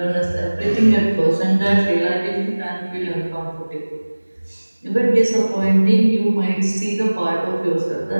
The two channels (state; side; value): inverted; both; correlation -1.00